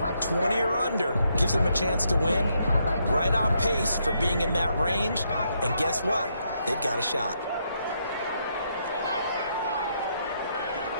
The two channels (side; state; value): both; inverted; correlation -0.77